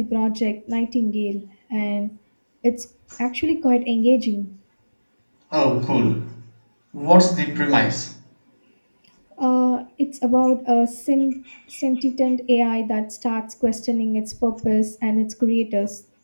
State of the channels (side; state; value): both; inverted; correlation -1.00